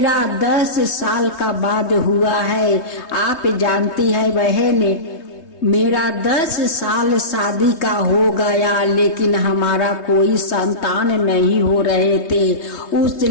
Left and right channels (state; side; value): late; right; 3.2 ms